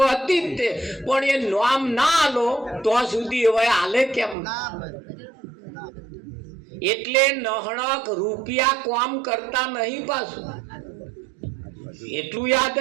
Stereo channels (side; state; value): left; drops out; at 4.4 s